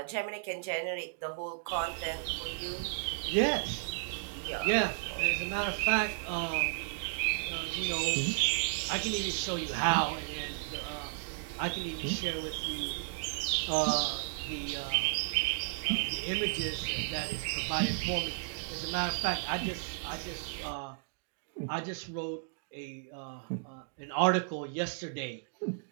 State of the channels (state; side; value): silent; left; digital silence